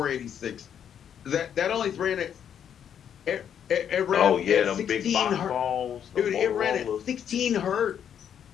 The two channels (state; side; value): quieter; right; 8.8 dB